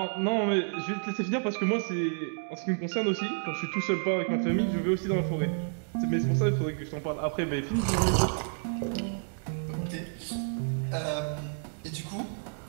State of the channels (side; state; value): left; silent; digital silence